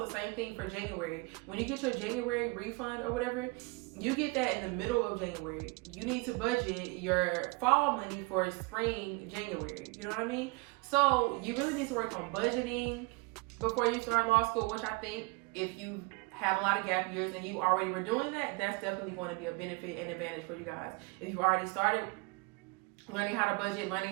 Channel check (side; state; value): left; quieter; 28.2 dB